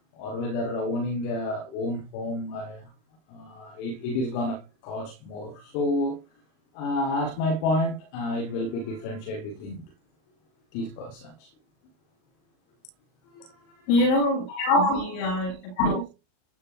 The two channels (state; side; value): late; right; 39 ms